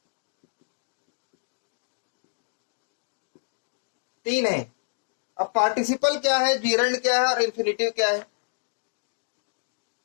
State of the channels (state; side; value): silent; right; digital silence